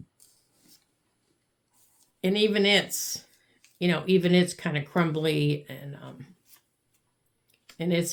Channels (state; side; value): identical; both; correlation 1.00